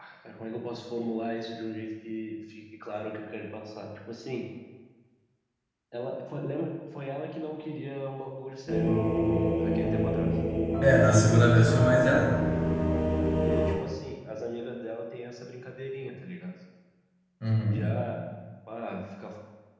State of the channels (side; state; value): both; identical; correlation 1.00